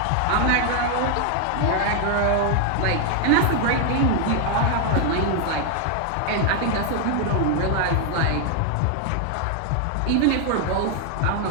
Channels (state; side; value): different; both; correlation 0.00